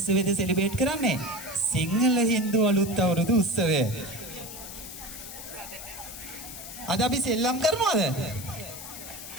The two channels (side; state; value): left; noise; hiss, 11 dB below the sound